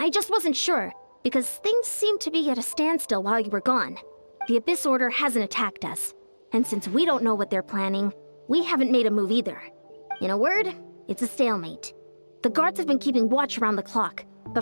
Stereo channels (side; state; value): both; inverted; correlation -1.00